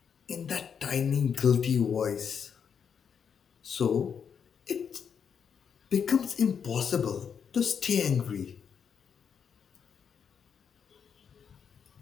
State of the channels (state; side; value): quieter; right; 7.1 dB